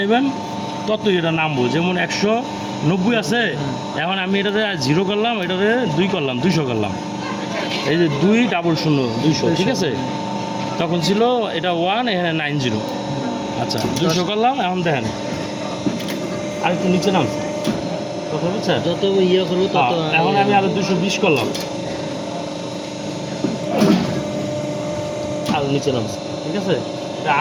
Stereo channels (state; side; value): identical; both; correlation 1.00